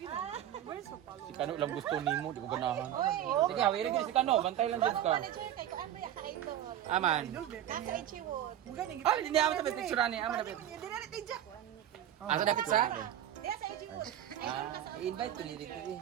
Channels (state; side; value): quieter; left; 11.4 dB